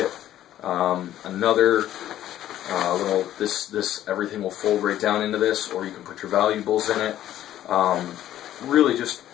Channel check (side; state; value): right; quieter; 12.5 dB